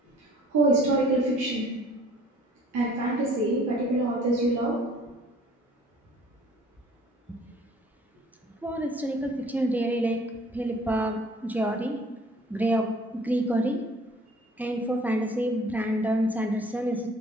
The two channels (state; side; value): normal; both; correlation 0.54